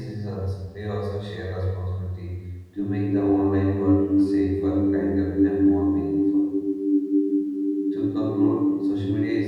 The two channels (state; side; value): identical; both; correlation 1.00